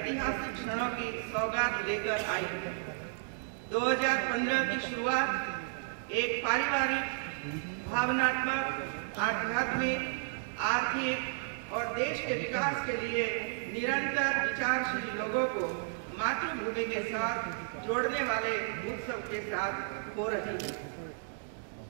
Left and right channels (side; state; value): left; silent; digital silence